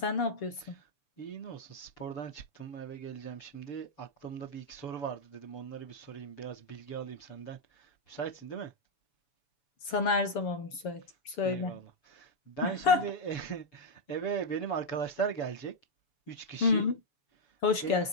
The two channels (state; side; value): late; right; 7.0 ms